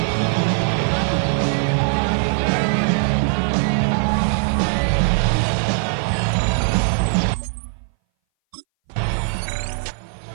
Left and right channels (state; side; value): silent; left; 61 dB below the other